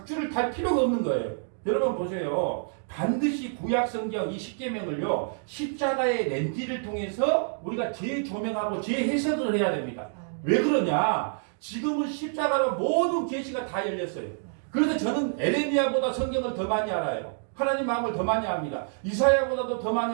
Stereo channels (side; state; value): left; silent; digital silence